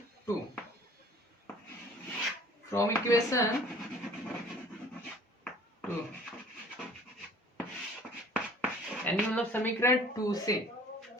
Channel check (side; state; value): both; normal; correlation 0.50